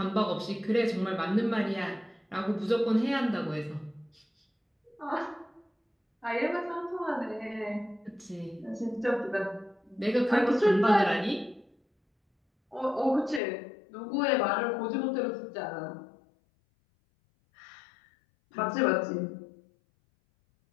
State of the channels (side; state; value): right; drops out; at 13.4 s